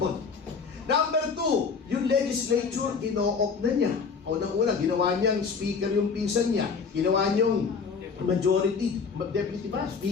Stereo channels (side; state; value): right; quieter; 5.4 dB